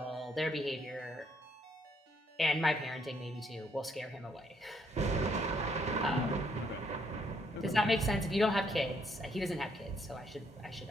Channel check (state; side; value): normal; both; correlation 0.71